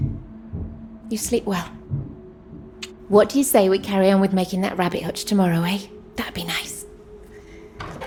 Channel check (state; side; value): identical; both; correlation 1.00